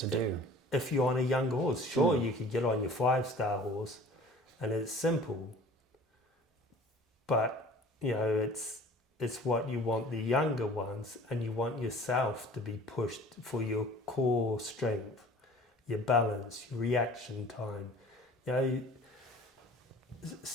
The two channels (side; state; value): both; normal; correlation 0.47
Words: do. If you're on a young horse, sure, you could get on your 5-star horse, and it's simple. But it's what you want the younger ones, and you want yourself to be pushed for your core strength, your balance, your reaction time.